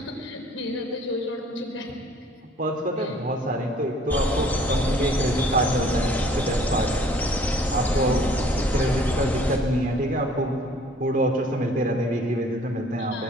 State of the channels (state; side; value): normal; both; correlation 0.55